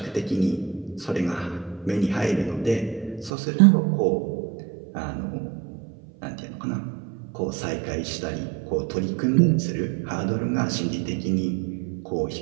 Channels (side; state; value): left; drops out; at 3.3 s